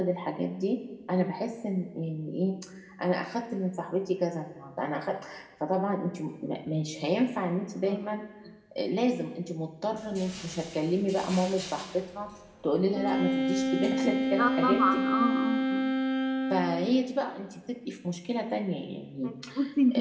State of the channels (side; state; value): both; identical; correlation 1.00